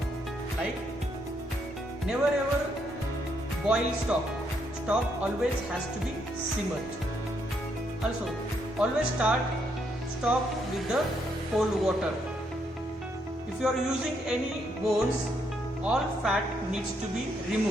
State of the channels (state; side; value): normal; both; correlation 0.75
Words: Like never ever boil stock. Stock always has to be simmered. Also always start stock with the cold water. If you are using any bones, all fat needs to be